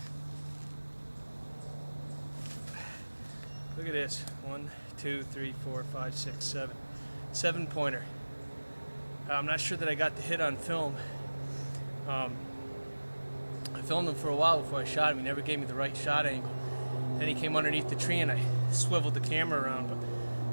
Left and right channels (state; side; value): inverted; both; correlation -1.00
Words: Look at this. 1, 2, 3, 4, 5, 6, 7. 7-pointer. I'm not sure that I got the hit on film. I filmed him for a while before I shot him. He never gave me the right shot angle. Then he came underneath the tree and I swiveled the camera around, but